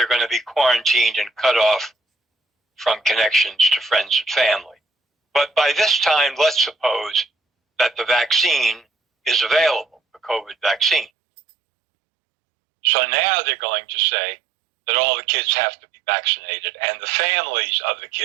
going to be quarantined and cut off from connections to friends and family. But by this time, let's suppose that the vaccine is available, the COVID vaccine. So now they're going to say that all the kids have to be vaccinated and the families of the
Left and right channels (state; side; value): drops out; left; at 11.1 s